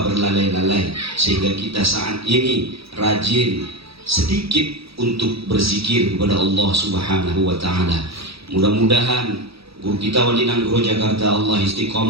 berlalai-lalai, sehingga kita saat ini rajin sedikit untuk berzikir kepada Allah Subhanahu wa Ta'ala. Mudah-mudahan guru kita Wali Nanggro Jakarta Allah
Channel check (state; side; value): late; left; 0.77 ms